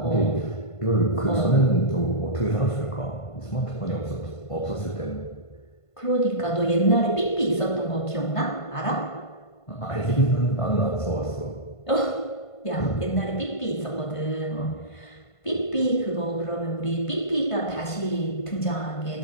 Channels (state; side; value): late; right; 1.5 ms